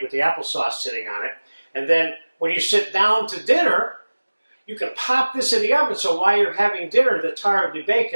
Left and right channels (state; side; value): inverted; both; correlation -1.00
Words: the applesauce sitting on it. And then when you sit down to dinner, you can pop this in the oven, so while you're having dinner, the tart will be baked,